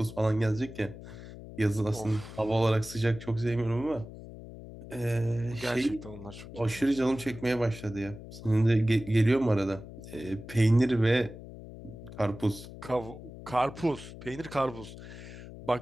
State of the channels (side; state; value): left; noise; hum, 14 dB below the sound